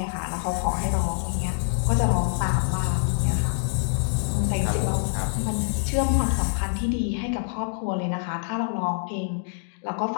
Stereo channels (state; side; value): silent; right; 61 dB below the other